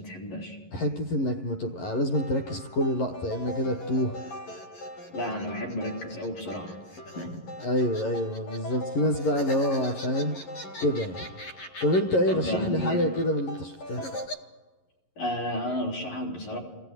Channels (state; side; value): late; right; 11 ms